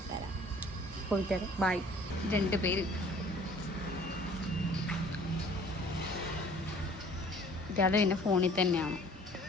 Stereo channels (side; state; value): both; normal; correlation 0.52